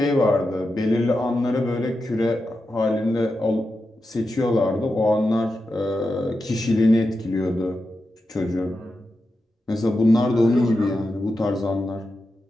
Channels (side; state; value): both; normal; correlation 0.89